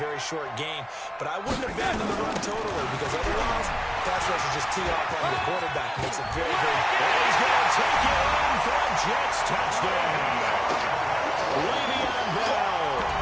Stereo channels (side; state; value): both; identical; correlation 1.00